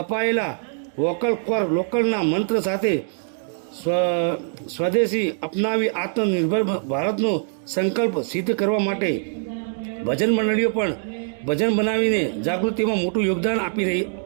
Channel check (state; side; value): silent; left; digital silence